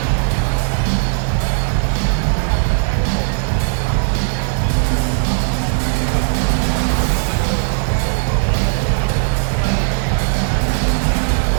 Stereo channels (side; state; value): left; silent; 68 dB below the other